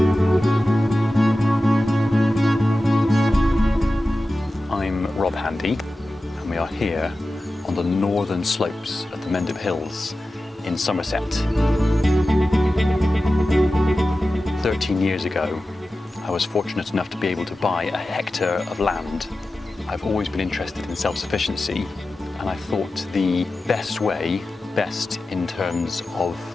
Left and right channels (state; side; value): normal; both; correlation 0.94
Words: I'm Rob Handy and we are here on the northern slopes of the Mendip Hills in Somerset. 13 years ago, I was fortunate enough to be able to buy a hectare of land. I've always been interested in self-sufficiency, and I thought the best way, best in terms of